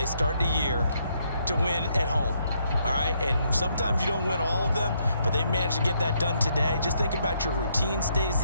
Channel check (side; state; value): both; inverted; correlation -0.73